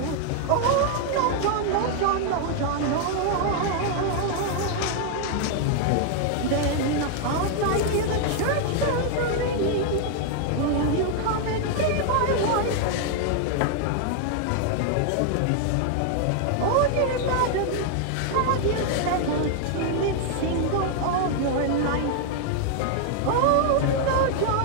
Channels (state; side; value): different; both; correlation 0.00